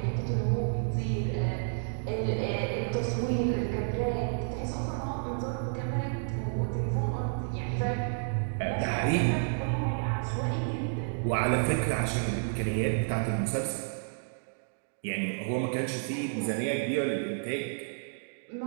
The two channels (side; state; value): left; silent; digital silence